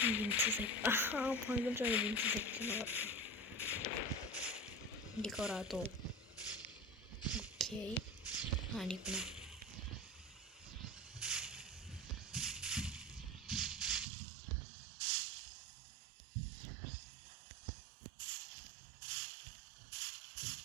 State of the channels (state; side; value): drops out; left; at 14.1 s